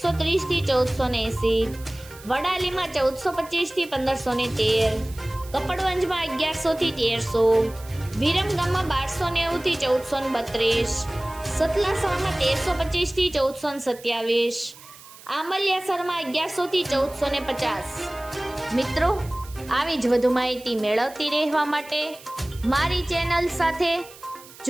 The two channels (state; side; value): noise; right; hiss, 20 dB below the sound